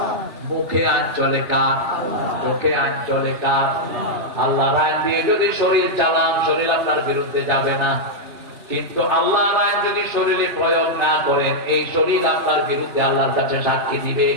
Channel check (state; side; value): late; left; 3.3 ms